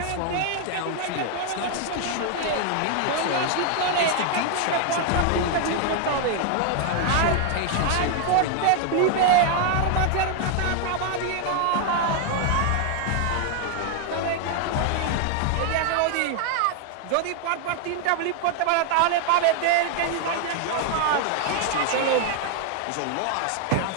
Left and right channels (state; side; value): different; both; correlation 0.00